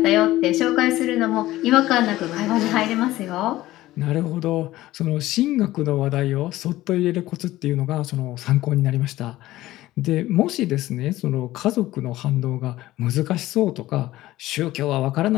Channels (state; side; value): quieter; right; 16.2 dB